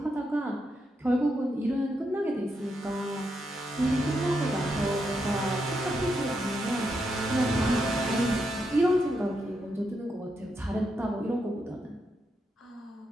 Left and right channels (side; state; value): both; normal; correlation 0.82